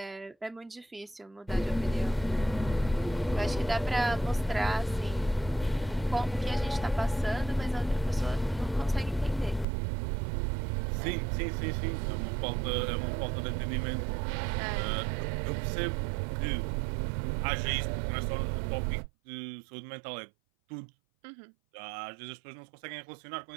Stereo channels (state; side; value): drops out; left; at 9.7 s